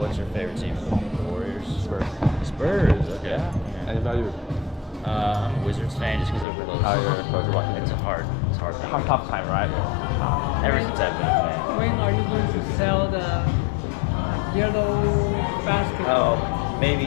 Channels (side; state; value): right; drops out; at 6.5 s